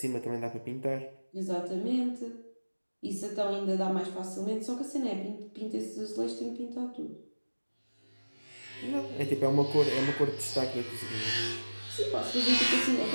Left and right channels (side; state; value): both; inverted; correlation -1.00